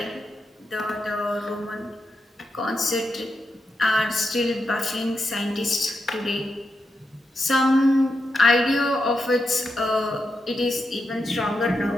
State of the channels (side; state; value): both; normal; correlation 0.86